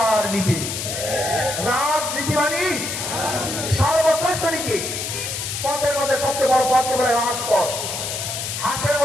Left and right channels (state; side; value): noise; left; hiss, 4 dB below the sound